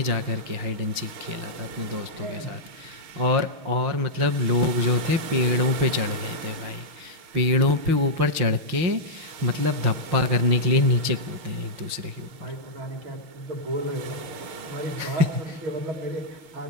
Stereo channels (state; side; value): late; left; 5.7 ms